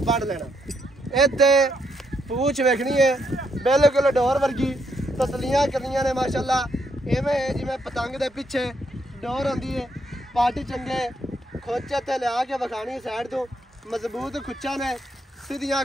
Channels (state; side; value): normal; both; correlation 0.76